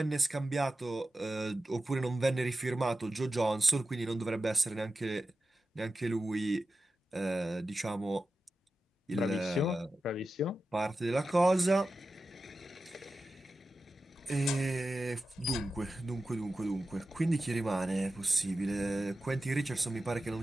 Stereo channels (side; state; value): both; normal; correlation 0.92